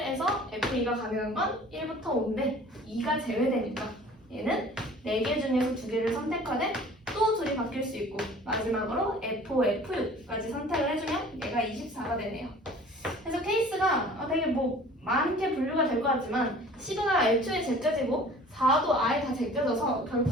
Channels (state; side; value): normal; both; correlation 0.47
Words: F2가 가능한 건 1부터 5인데 2가 제외되니까 얘는 4개 중에서 2개를 선택하되 또 둘이 바뀔 수 있고 마지막으로 F5, F6까지 선택을 해주면 얘가 24가 되네요. 그래서 케이스가 되게 뭐 많게 분류가 될 것 같지만 10가 애초에 제껴지고 4도 아예 다 제껴져서